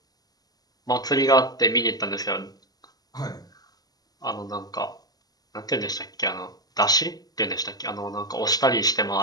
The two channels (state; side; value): late; right; 0.19 ms